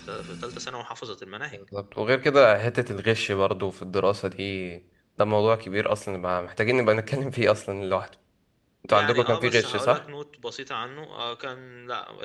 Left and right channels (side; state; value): both; identical; correlation 1.00